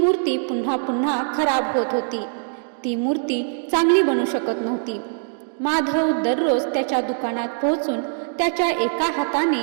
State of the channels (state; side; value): silent; left; digital silence